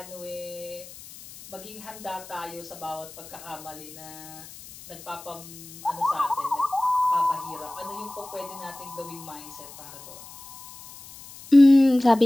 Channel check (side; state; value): left; noise; hiss, 17 dB below the sound